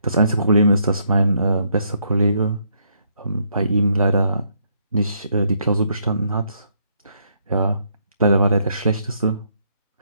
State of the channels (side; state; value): both; inverted; correlation -0.73